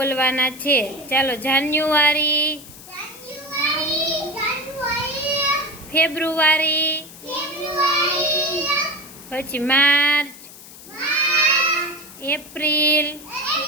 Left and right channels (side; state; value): left; noise; hiss, 17 dB below the sound